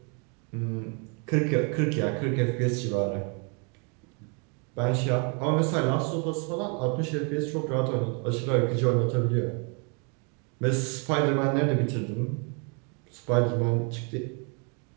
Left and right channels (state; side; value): quieter; left; 36.6 dB